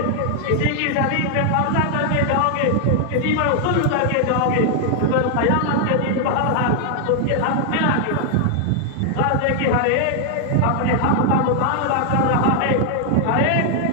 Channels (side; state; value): both; different; correlation 0.00